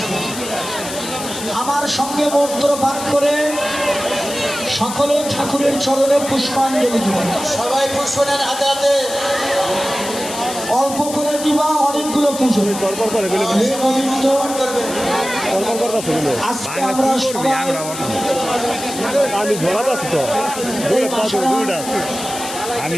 আমার সঙ্গে মন্ত্র পাঠ করে সকলে ঠাকুরের চরণে পুষ্পাঞ্জলি দিবা। সবাই পুষ্প নেন হাতে হাতে। অল্প করে দিবা, অনেকগুলো পুজো। আজকে আমরা সবাই আমি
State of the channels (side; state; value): left; noise; hiss, 9 dB below the sound